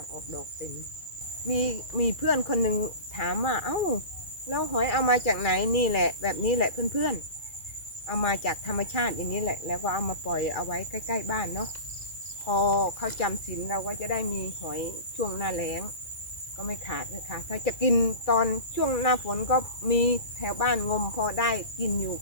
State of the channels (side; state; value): right; late; 2.4 ms